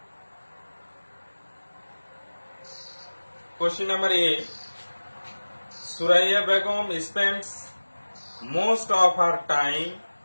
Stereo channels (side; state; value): both; inverted; correlation -1.00